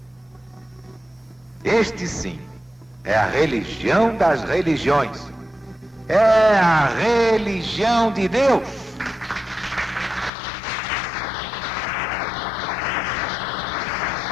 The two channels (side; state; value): right; drops out; at 10.3 s